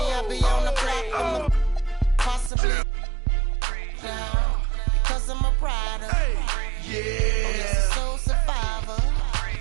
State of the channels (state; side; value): drops out; left; at 2.5 s